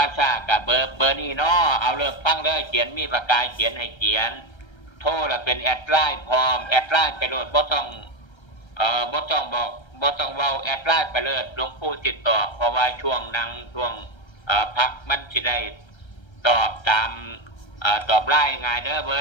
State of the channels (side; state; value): right; late; 1.3 ms